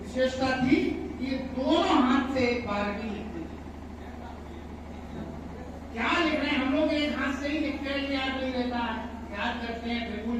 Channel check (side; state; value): both; identical; correlation 1.00